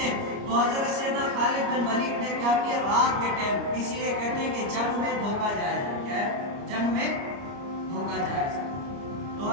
تو حضرت سیدنا خالد بن ولید نے کیا کیا؟ رات کے ٹائم، اسی لیے کہتے ہیں کہ جنگ میں دھوکہ جائز ہے. کیا ہے؟ جنگ میں دھوکہ جائز ہے. تو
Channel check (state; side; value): late; left; 29 ms